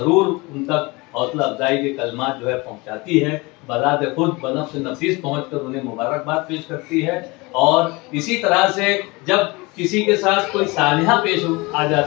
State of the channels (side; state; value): right; quieter; 24.8 dB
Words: उन तक हौसला अफजाई के कलमात जो है पहुंचाती है, बज़ात खुद बनफ्स नफीस पहुंचकर उन्हें मुबारकबाद पेश करती है। और इसी तरह से जब किसी के साथ कोई सानिहा पेश आ